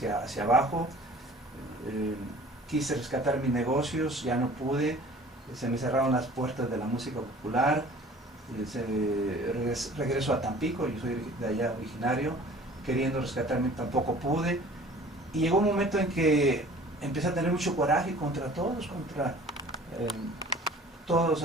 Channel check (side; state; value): both; normal; correlation 0.48